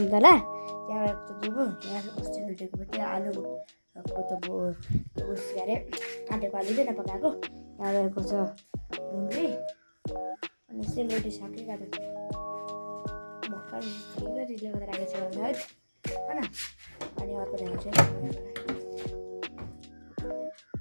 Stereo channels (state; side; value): inverted; both; correlation -1.00